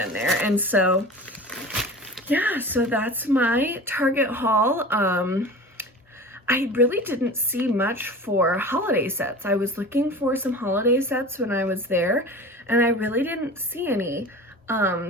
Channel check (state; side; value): normal; both; correlation 0.36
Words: there. And so yeah, so that's my Target haul. I really didn't see much for holiday sets. I was looking for some holiday sets when I was there, and I really didn't see any.